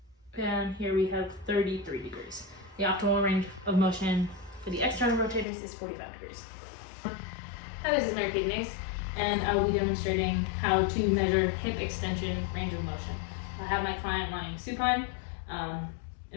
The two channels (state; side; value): drops out; right; at 5.5 s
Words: And here we have 33 degrees. The optimal range of motion for the external rotators is 45 degrees. Hi, this is Mary Kidneys, and I will be demonstrating how to measure hip extension range of motion. I have my client lying supine,